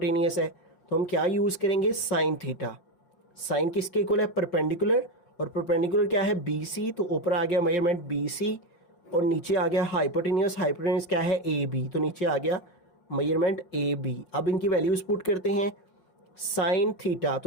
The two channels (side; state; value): right; late; 5.7 ms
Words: है, तो हम क्या यूज़ करेंगे साइन थीटा। साइन किसके इक्वल है परपेंडिकुलर, और परपेंडिकुलर क्या है BC, तो ऊपर आ गया मेजरमेंट BC और नीचे आ गया हाइपोटेनियस। हाइपोटेनियस क्या है AB, तो नीचे आ गया मेजरमेंट AB। अब इनकी वैल्यूज पुट करते हैं। साइन थीटा,